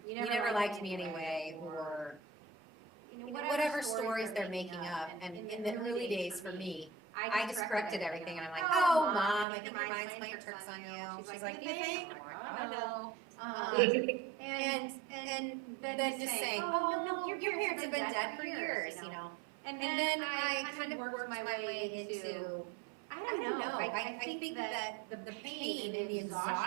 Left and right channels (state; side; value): drops out; left; at 9.5 s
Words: you never liked me anyway, or, whatever stories they're making up. And in the early days for me, I just corrected everything, and I'm like, oh, Mom, I think your mind's playing tricks on you. She's like, do you think? I'm like, oh, no. And then just saying, oh, no, your parents have been dead for years, you know. And then I kind of worked my way into, I don't know, I think that the pain and the